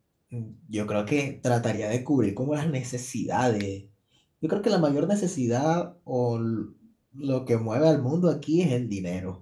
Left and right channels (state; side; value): identical; both; correlation 1.00